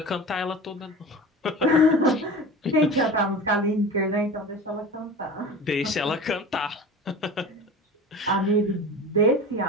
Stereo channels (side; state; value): both; normal; correlation 0.33